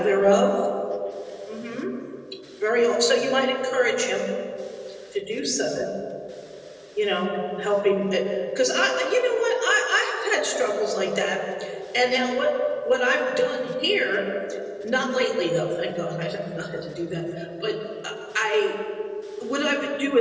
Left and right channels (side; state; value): both; identical; correlation 1.00